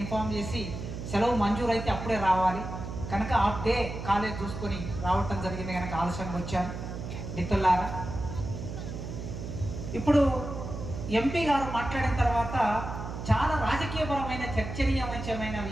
చేసి సెలవు మంజూరు అయితే అప్పుడే రావాలి కనుక హాఫ్ డే కాలేజ్ చూసుకొని రావటం జరిగింది కనుక ఆలస్యంగా వచ్చాను. మిత్రులారా, ఇప్పుడు ఎంపీ గారు మాట్లాడిన తర్వాత చాలా రాజకీయపరమైన చర్చనీయమైన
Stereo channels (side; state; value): right; noise; hum, 7 dB below the sound